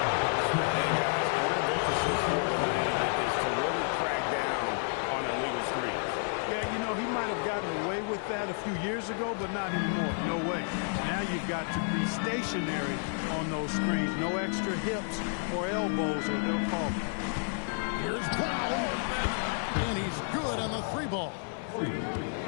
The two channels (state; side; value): silent; right; 55 dB below the other